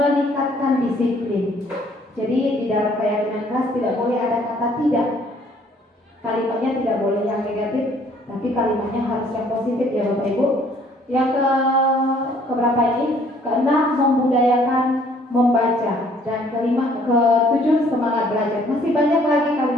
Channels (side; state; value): both; normal; correlation 0.60